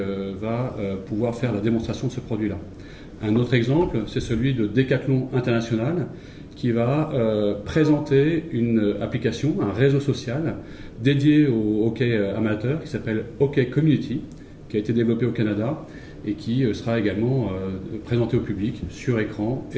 pouvoir faire la démonstration de ce produit-là. Un autre exemple, c'est celui de Decathlon International, qui va présenter une application, un réseau social dédié au hockey amateur qui s'appelle Hockey Community, qui a été développé au Canada et qui sera également présenté au public sur écran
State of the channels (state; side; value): identical; both; correlation 1.00